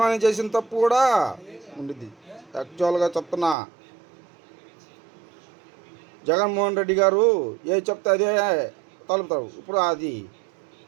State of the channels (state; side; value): drops out; left; at 3.6 s